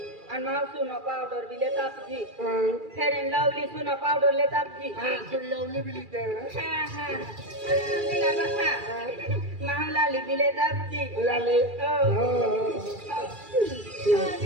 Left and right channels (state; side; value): late; left; 2.4 ms